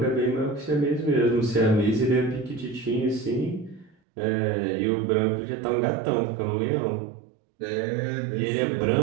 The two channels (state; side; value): drops out; left; at 4.0 s